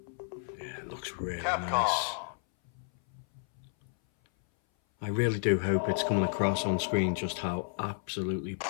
Yeah, it looks really nice. I really do hope it's coming across on screen just how absolutely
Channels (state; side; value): silent; right; 57 dB below the other